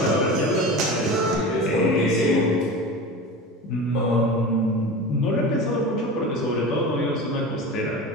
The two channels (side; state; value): both; normal; correlation 0.31